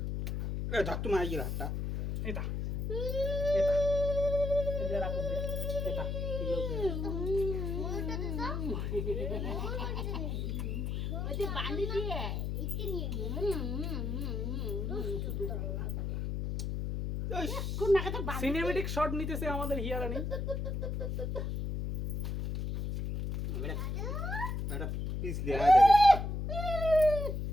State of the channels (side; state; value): left; noise; hum, 2 dB below the sound